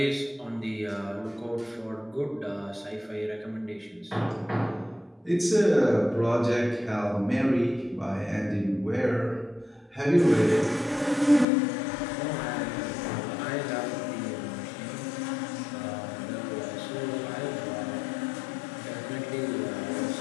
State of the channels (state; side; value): drops out; right; at 11.5 s